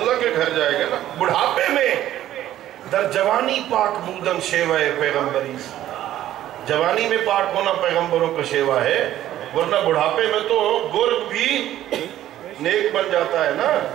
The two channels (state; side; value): quieter; left; 12.9 dB